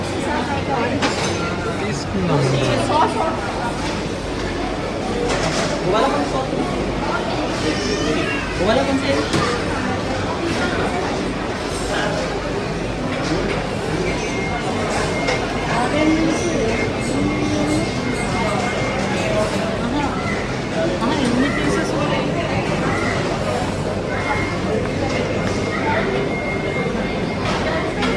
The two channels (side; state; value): both; identical; correlation 1.00